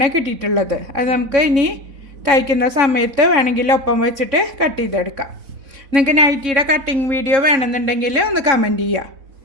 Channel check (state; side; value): late; left; 3.6 ms